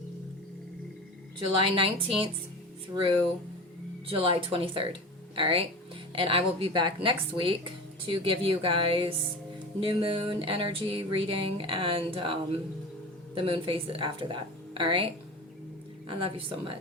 July 19th through July 23rd. All right? And I will be back next week to give you guys new moon energy reading and the moon phase after that. All right? I love you so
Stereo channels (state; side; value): normal; both; correlation 0.31